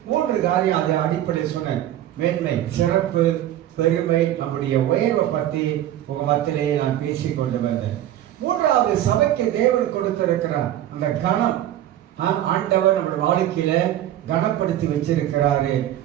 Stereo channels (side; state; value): left; quieter; 12.5 dB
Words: 3 காரியம் அதை அடிப்படையில் சொன்னேன். மேன்மை, சிறப்பு, பெருமை, நம்முடைய உயர்வை பற்றி உங்க மத்தியிலே நான் பேசிக்கொண்டு வந்தேன். 3ஆவது, சபைக்கு தேவன் கொடுத்திருக்கிறார் அந்த கணம். ஆண்டவர் நம்ம வாழ்க்கையில கனப்படுத்தி வச்சிருக்கிறாரு